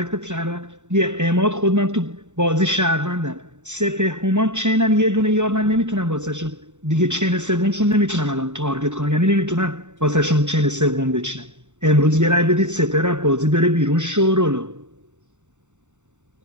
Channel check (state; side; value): late; left; 0.84 ms